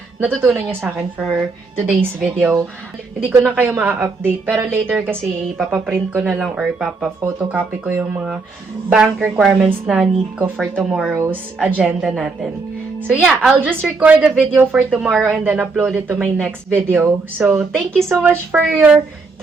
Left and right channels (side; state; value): left; quieter; 4.0 dB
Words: natutunan nyo sa akin for today's video. Hindi ko na kayo ma-update pero later kasi ipapaprint ko na lang or ipapa-photocopy ko yung mga bank requirements na need ko for tomorrow's agenda natin. So yeah, I'll just record the video for tomorrow and then upload it to my next video. So thank you so much for your